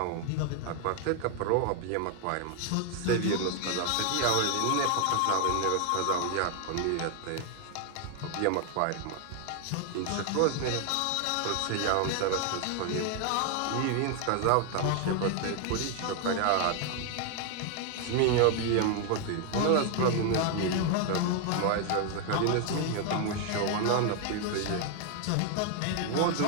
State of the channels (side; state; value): both; different; correlation 0.00